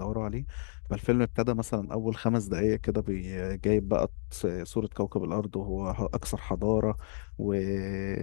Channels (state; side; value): silent; right; digital silence